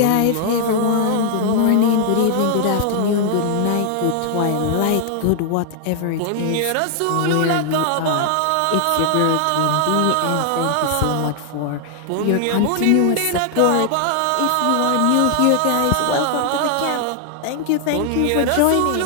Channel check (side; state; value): both; different; correlation 0.00